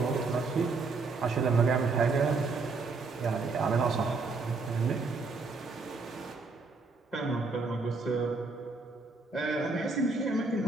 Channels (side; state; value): left; quieter; 4.0 dB